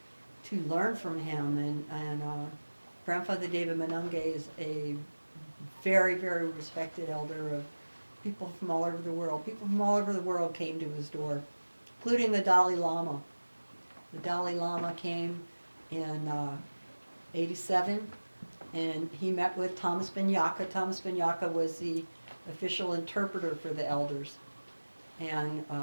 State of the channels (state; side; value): inverted; both; correlation -1.00